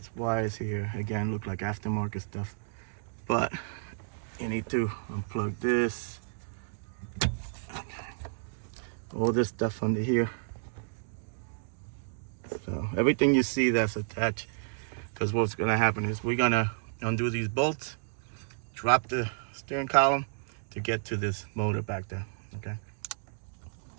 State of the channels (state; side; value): silent; left; digital silence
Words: wires here, again, look like aftermarket stuff, but you need to unplug this. All this stuff under here. So everything you see that's attached, because what's gonna happen is we're gonna undo these bolts, drop the steering column to get to this motor back there, okay?